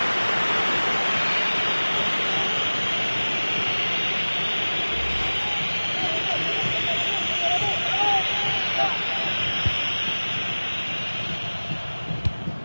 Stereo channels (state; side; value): inverted; both; correlation -1.00